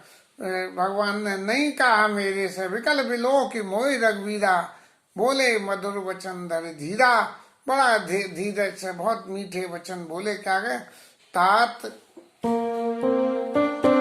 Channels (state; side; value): identical; both; correlation 1.00